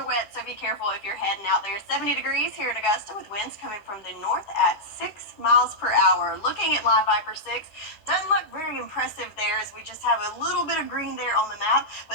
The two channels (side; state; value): right; late; 10 ms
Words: wet, so be careful if you're heading out there. 70 degrees here in Augusta with winds coming from the north at 6 miles per hour. Looking at Live Viper 6, doesn't look very impressive there as we just have a little bit of green there on the map,